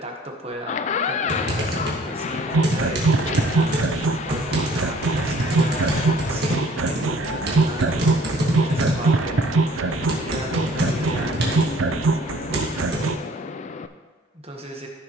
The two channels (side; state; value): both; normal; correlation 0.55